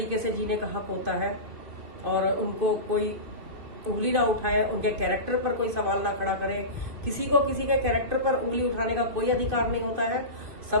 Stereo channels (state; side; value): late; left; 2.5 ms